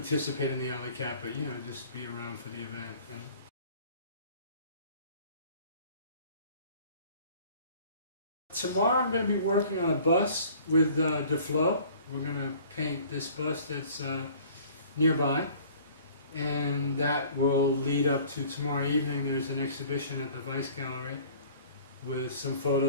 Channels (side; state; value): both; inverted; correlation -0.50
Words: in the alley cat, but you know, just be around for the event. And tomorrow I'm going to be working on a bus with DeFlo. We're going to paint this bus that's nearby, and that will lead up to tomorrow evening. There's an exhibition at the Vice Gallery with some